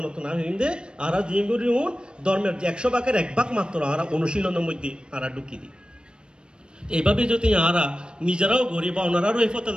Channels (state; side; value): late; left; 0.053 ms